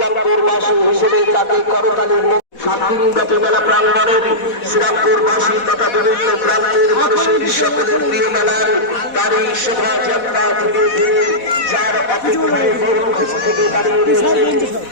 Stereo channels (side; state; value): right; late; 4.1 ms